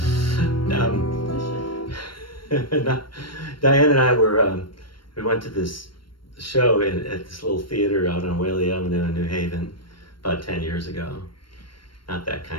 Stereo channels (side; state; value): right; late; 0.72 ms